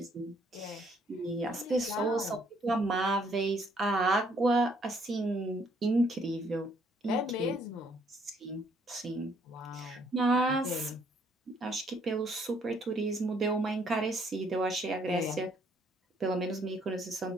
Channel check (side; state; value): both; normal; correlation 0.67